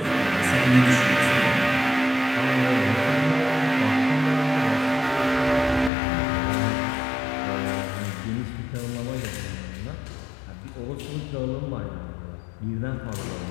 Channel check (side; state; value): right; drops out; at 5.9 s